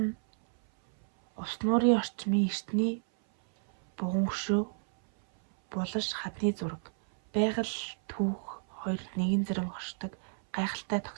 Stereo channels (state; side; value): silent; left; 57 dB below the other